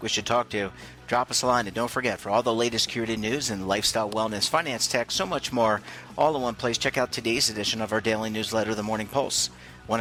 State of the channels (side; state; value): both; identical; correlation 1.00